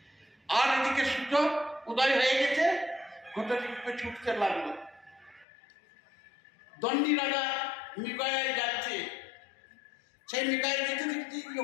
আর এদিকে সূর্য উদয় হয়ে গেছে, ঘটকি ছুটতে লাগলো। দণ্ডী রাজা মৃগয়ায় যাচ্ছে, সেই মৃগয়ায় যেতে দেখছি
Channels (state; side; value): drops out; right; at 5.5 s